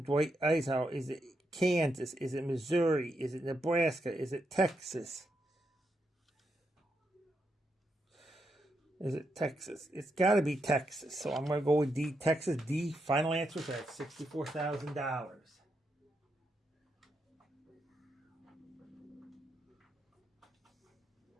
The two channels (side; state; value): both; normal; correlation 0.82